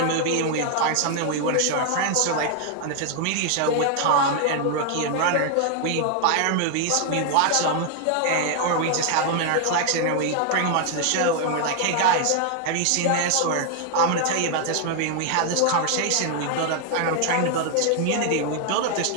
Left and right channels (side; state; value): both; different; correlation 0.00